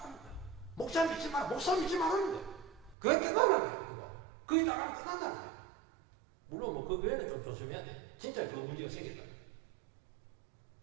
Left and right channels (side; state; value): left; drops out; at 3.0 s